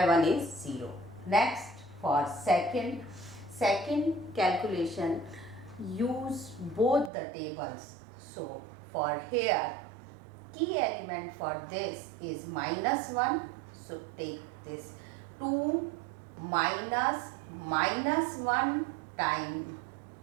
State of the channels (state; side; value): drops out; left; at 7.1 s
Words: 1 is 0. Next, for second calculation, use both the tables. So for here, key element for this is minus 1. So take this 2 minus 1 times